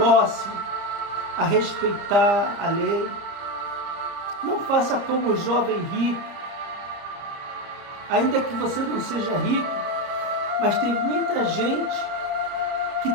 a respeitar a lei. Não faça como o jovem rico. Ainda que você não seja rico, mas tem muita gente que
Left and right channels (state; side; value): late; left; 30 ms